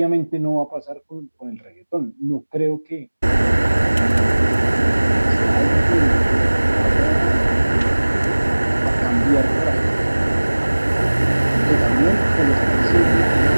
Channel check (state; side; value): inverted; both; correlation -1.00